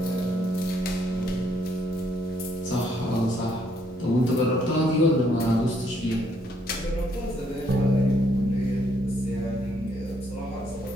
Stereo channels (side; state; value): both; normal; correlation 0.70